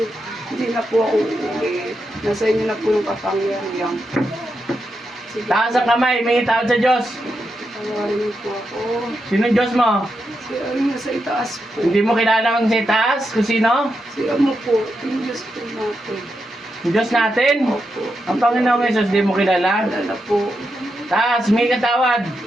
Hindi na po ako uuwi. Nasa inyo na po yung kapangyarihan. Sige, Taas ang kamay, may tawad sa Diyos. tawarin niyo po ako. Sinong Diyos mo? Si ano nasa itaas po. Hindi mo kilala ang sa taas? Kung sino? Si ano po, yung Diyos po natin. Yung Diyos natin? Opo. Ang Panginoong Jesus, di mo kilala? Alala po. Taas, may katawad.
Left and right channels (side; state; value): both; normal; correlation 0.85